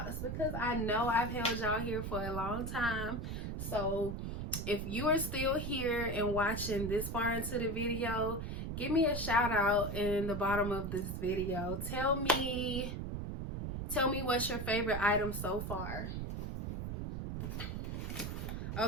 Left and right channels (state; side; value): noise; right; rumble, 4 dB below the sound